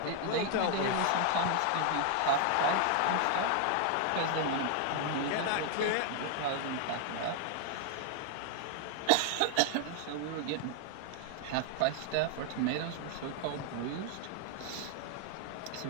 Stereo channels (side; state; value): both; different; correlation 0.00